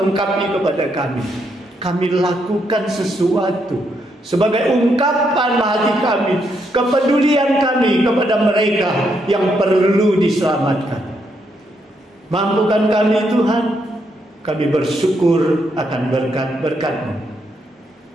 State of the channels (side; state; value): both; normal; correlation 0.77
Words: kepada kami lakukan sesuatu sebagai ungkapan hati kami, kepedulian kami kepada mereka yang perlu diselamatkan. Mampukan kami Tuhan, kami bersyukur akan berkat-berkat-Mu.